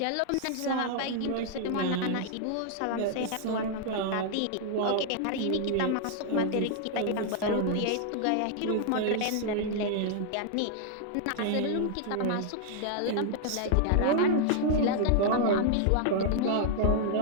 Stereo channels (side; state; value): both; different; correlation 0.00